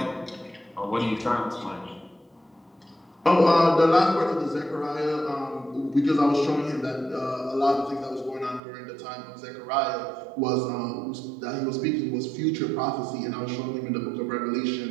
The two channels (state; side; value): drops out; left; at 8.6 s